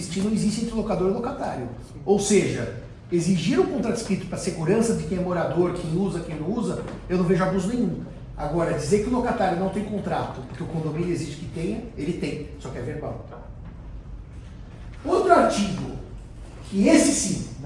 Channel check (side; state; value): both; identical; correlation 1.00